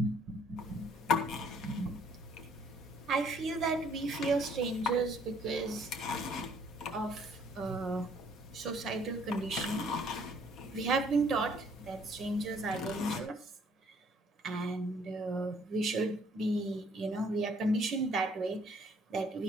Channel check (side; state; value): both; normal; correlation 0.62